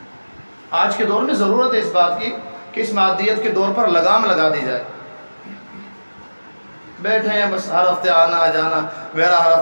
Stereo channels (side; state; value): both; inverted; correlation -1.00